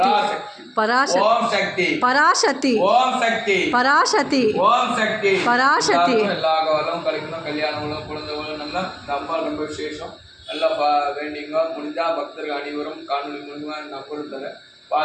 ஓம் சக்தி பராசக்தி ஓம் சக்தி பராசக்தி ஓம் சக்தி பராசக்தி. எல்லா காலம் கழிக்கணும், கல்யாணங்களும் குழந்தைகளும் நல்லா ரொம்ப ரொம்ப விசேஷம். நல்லா வேண்டிங்க. முடிஞ்சா பக்தர்கள் அனைவரும் காணொலி மூலமா நம்பர் தரேன்,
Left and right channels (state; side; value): identical; both; correlation 1.00